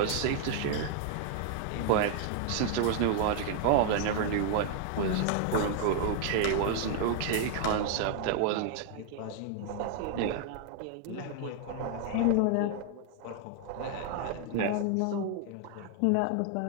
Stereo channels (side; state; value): both; different; correlation 0.00